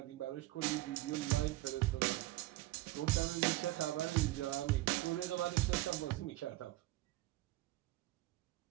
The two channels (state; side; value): quieter; left; 17.7 dB